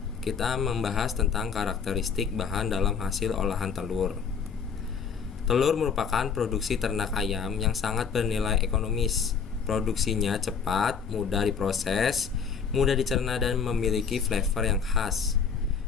kita membahas tentang karakteristik bahan dalam hasil olahan telur. Telur merupakan produksi ternak ayam yang sangat bernilai ekonomis. Produksinya cepat, mudah diproses, mudah dicerna dan memiliki flavor yang khas.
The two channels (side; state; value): right; quieter; 6.4 dB